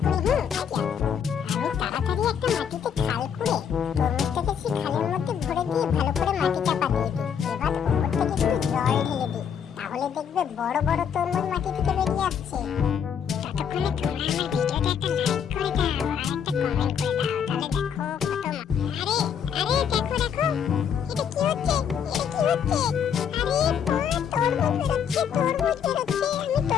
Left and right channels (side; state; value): right; quieter; 7.9 dB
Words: করি, আইডিয়া। আমি তাড়াতাড়ি একটা মাটিতে খাল খুঁড়ে তরমুজটাকে সেই খালের মধ্যে ভরে দিয়ে ভালো করে মাটি চাপা দিয়ে দিই। এবার উপর থেকে একটু জল ঢেলে দিই, তাহলে দেখবে বড় বড় তরমুজ মাটি থেকে বেরিয়ে আসছে। ততক্ষণে তোমরা আমার ভিডিওতে একটা লাইক করে দাও আর একটা কমেন্ট করে দাও, তাহলে দেখো কত আরে আরে দেখো দেখো, এটা কি হচ্ছে, এটা কি হচ্ছে। আরে বাহ, তরমুজ বেরোচ্ছে, তরমুজ বেরোচ্ছে। আমি